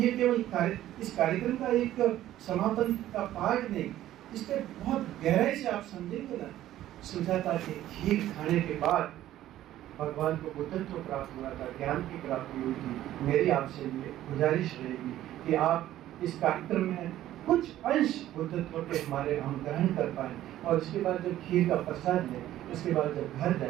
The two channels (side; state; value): left; quieter; 13.4 dB